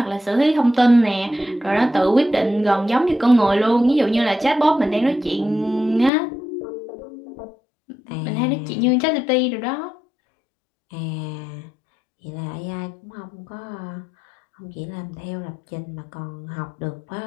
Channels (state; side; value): drops out; right; at 6.1 s